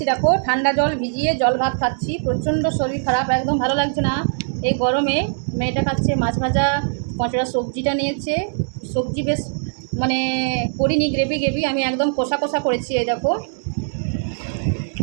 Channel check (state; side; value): silent; left; digital silence